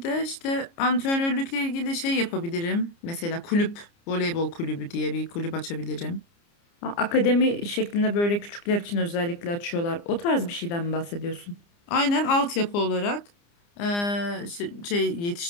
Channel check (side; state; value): right; late; 29 ms